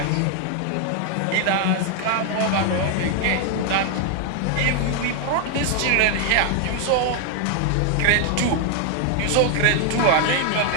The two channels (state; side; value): different; both; correlation 0.00